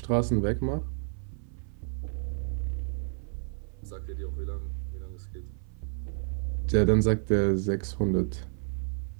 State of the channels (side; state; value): left; silent; 57 dB below the other